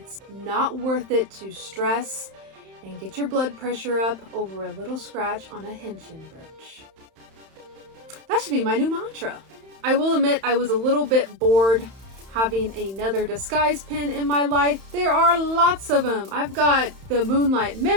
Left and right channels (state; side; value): late; left; 31 ms